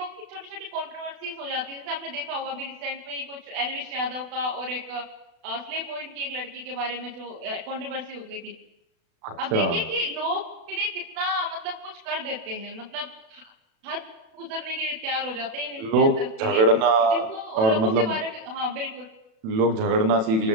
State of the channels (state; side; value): late; left; 36 ms